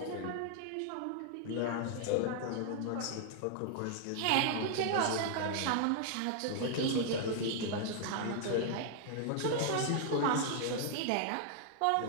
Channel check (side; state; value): both; different; correlation -0.01